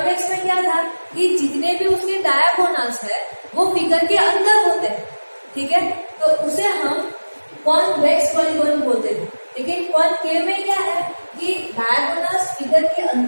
में क्या था कि जितने भी उसके डायगोनल्स है वो फिगर के अंदर होते हैं, ठीक है, तो उसे हम कॉन्वेक्स पॉलीगॉन बोलते थे। लेकिन कॉनकेव में क्या है कि डायगोनल्स फिगर के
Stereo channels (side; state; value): both; inverted; correlation -1.00